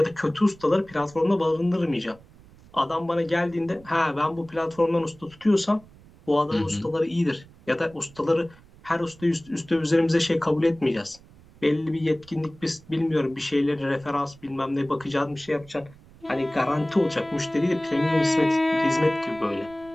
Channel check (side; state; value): right; noise; rumble, 24 dB below the sound